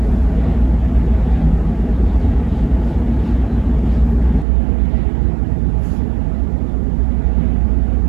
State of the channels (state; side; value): drops out; left; at 4.5 s